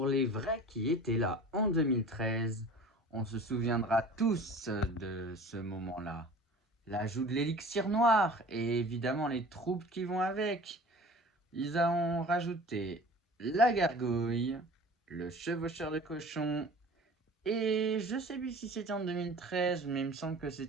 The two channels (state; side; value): normal; both; correlation 0.42